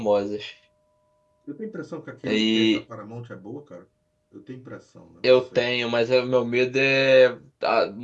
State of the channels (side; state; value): both; identical; correlation 1.00